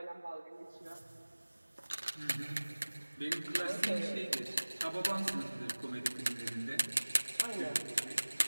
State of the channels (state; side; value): inverted; both; correlation -1.00